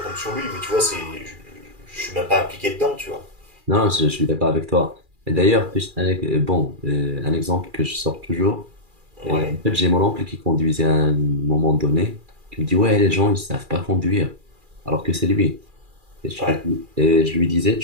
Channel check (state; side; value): late; left; 2.4 ms